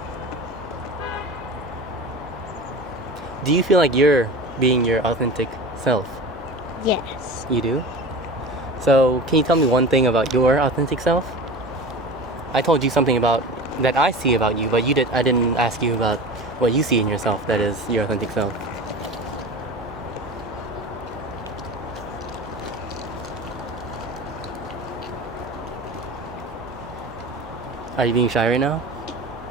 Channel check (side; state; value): both; normal; correlation 0.33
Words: Do you feel like you're being your authentic self? Yes. You do? So can you tell me one thing about your authentic self? I told you something about that I see about you, but I didn't ask you about what you see in yourself that is your authentic self. Are you being shy right now?